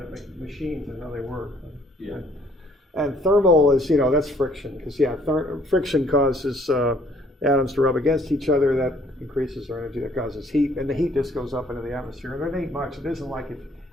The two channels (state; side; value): normal; both; correlation 0.62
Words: machines and how they work. Yeah. And thermal is, you know, that's friction. Because, friction causes atoms to rub against each other. That increases their energy. That causes heat. And the heat just goes up into the atmosphere. And there ain't much. It isn't like